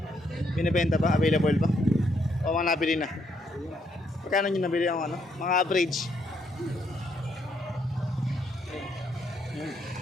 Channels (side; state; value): both; normal; correlation 0.73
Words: Binibenta pa? Available pa? O mga nabili na? Magkano nyo nabili ang ano? Mga average?